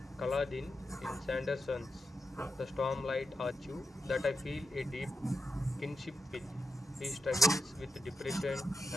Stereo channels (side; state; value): both; normal; correlation 0.85